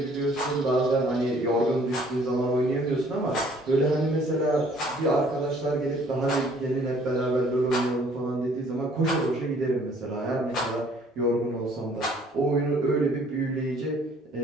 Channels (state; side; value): normal; both; correlation 0.59